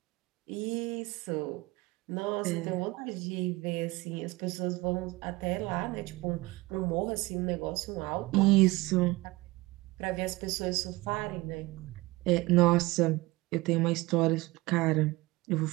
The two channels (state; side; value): quieter; left; 21.4 dB